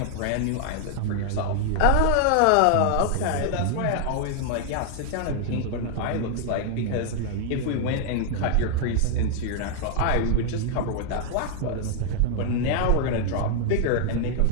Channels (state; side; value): different; both; correlation 0.00